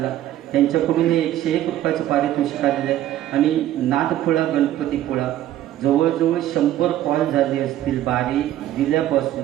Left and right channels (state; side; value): quieter; left; 12.9 dB